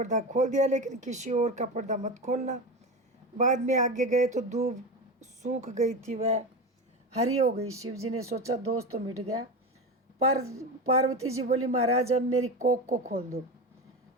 खोल दिया, लेकिन किसी और का पर्दा मत खोलना। बाद में आगे गए तो दूब सूख गई थी, वह हरी हो गई। शिव जी ने सोचा दोस्त तो मिट गया। पर पार्वती जी बोली, महाराज अब मेरी कोख को खोल दो।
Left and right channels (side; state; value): both; normal; correlation 0.22